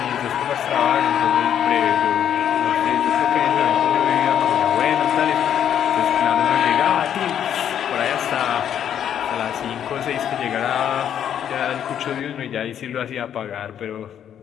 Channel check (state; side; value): quieter; right; 9.5 dB